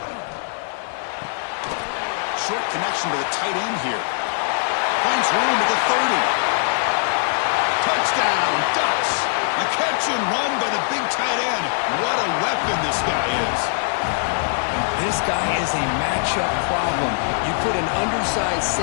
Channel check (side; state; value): right; silent; 64 dB below the other